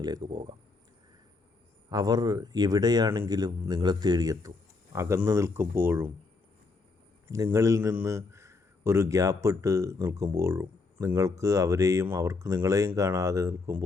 പോകാം. അവർ എവിടെയാണെങ്കിലും നിങ്ങളെ തേടിയെത്തും. അകന്നു നിൽക്കുമ്പോഴും നിങ്ങളിൽ നിന്ന് ഒരു ഗ്യാപ്പിട്ട് നിൽക്കുമ്പോഴും നിങ്ങൾക്ക് അവരെയും അവർക്ക് നിങ്ങളെയും കാണാതെ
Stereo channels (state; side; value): quieter; right; 4.0 dB